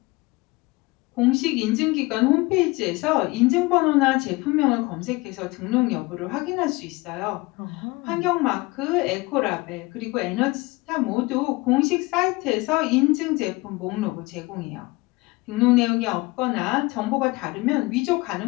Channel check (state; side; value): quieter; right; 22.9 dB